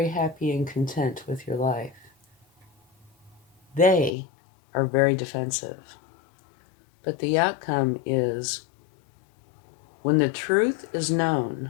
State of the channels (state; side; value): drops out; right; at 4.1 s